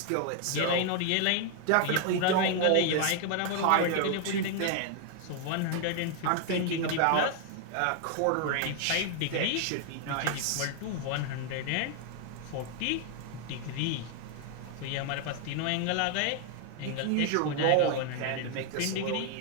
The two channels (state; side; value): different; both; correlation 0.00